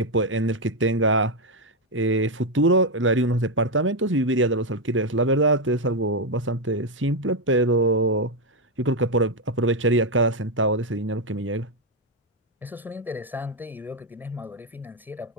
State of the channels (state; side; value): normal; both; correlation 0.03